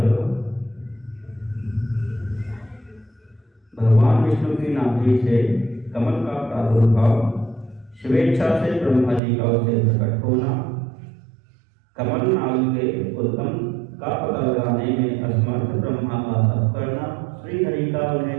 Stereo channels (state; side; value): drops out; left; at 9.2 s